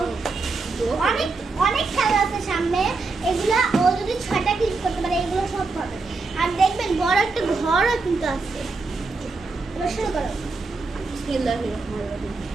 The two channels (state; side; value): quieter; left; 3.9 dB